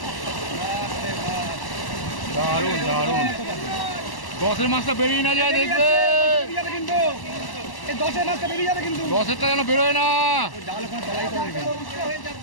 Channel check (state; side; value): late; right; 1.1 ms